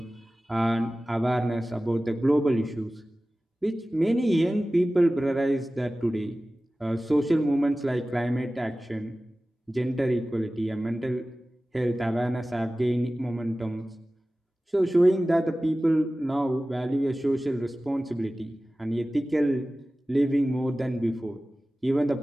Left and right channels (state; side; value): normal; both; correlation 0.96